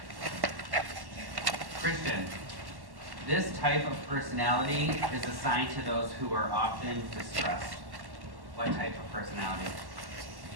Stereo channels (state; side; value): late; left; 1.1 ms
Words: Christian, this type of personality is assigned to those who are often distressed. What type of personality?